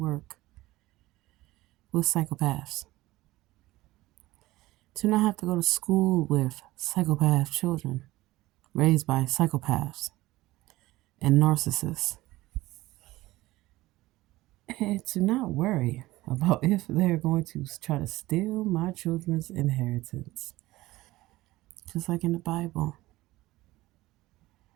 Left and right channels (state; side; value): quieter; left; 18.1 dB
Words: with psychopaths. To not have to go to school with psychopath children raised by psychopaths and narcissists. And to not worry about if they're going to try to steal my children's inheritance. Just like in the Bible.